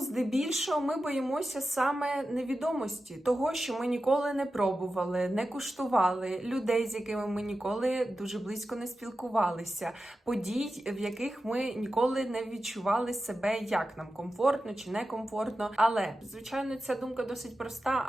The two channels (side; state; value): both; normal; correlation 0.92